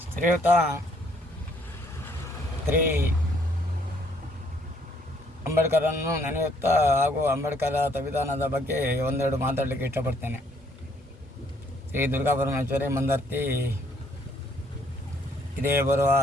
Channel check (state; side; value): normal; both; correlation 0.66